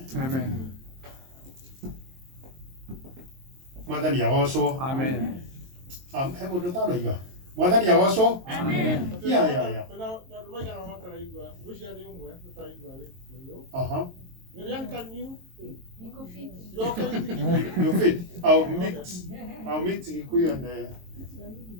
Amen. Mwathani agoco. Amen. Hebu ndotano iga. Mwathani agoco. Amen. Ya. Aha. You fit. I'll mix Kikuyu and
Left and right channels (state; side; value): late; left; 23 ms